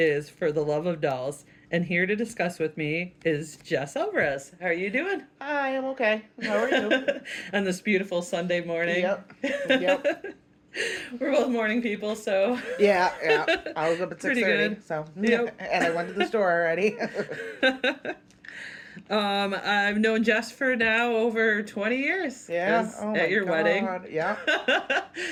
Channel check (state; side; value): identical; both; correlation 1.00